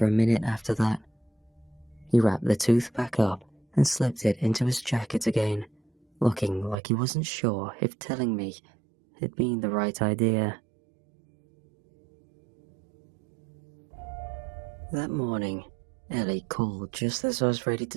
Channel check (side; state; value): left; drops out; at 6.8 s